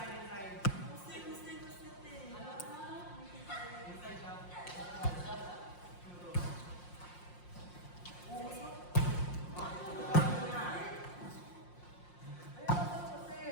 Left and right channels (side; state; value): right; late; 5.6 ms